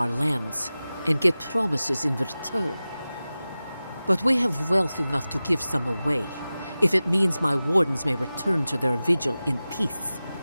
lands, and get promises in return. But we have wealth enough to give some away, if it means my Wardens may return to their vigil in peace.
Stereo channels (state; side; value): inverted; both; correlation -0.96